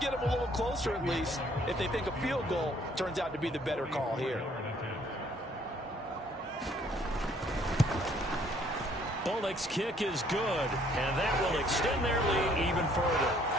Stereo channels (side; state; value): both; normal; correlation 0.62